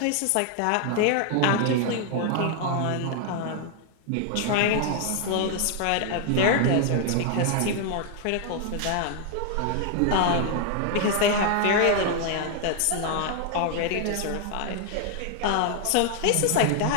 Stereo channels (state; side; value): different; both; correlation 0.00